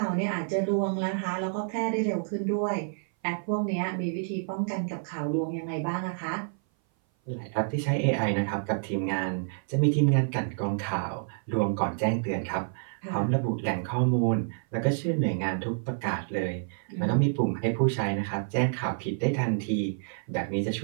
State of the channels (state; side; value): silent; left; 57 dB below the other